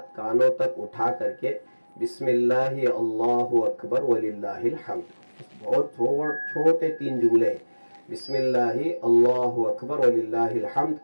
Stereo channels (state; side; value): inverted; both; correlation -1.00